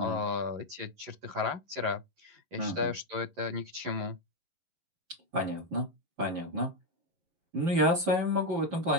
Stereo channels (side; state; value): left; late; 11 ms